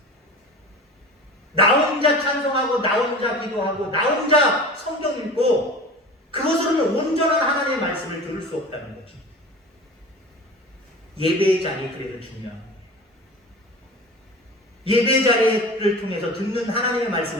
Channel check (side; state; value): both; normal; correlation 0.36